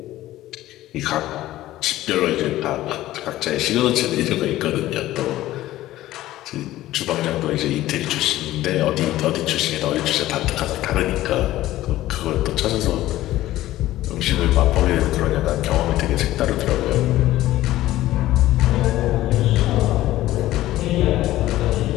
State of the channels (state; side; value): quieter; right; 15.3 dB